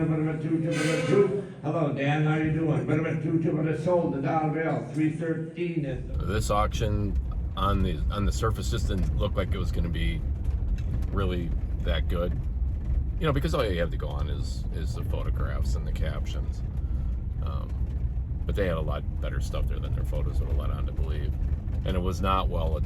a bit of a 2, tip of a 2. Hello, Dan, how you doing? Bit of a 2, tip of a sold, the dollar bill, 313 is the... This auction on the surface just didn't look like it was going to be really that good. You know, because all you have to go on is the photographs and the captions. But they had a lot better stuff there than their photos would have let on to believe. And it was not well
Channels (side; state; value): both; identical; correlation 1.00